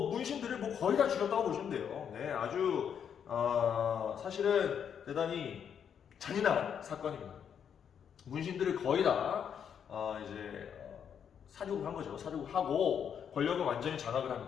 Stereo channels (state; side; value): quieter; right; 8.0 dB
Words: 문신들을 뭐 거의 다 죽였다고 보시면 돼요. 네, 아주 사실은 대단히 잔인한 사건입니다. 문신들을 거의 다 이제 사륙을 한 거죠. 사륙을 하고 권력을 완전히 장악을